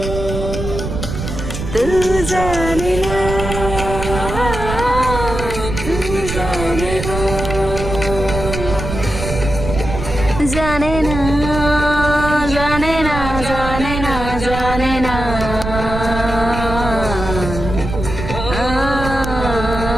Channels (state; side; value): noise; right; rumble, 6 dB below the sound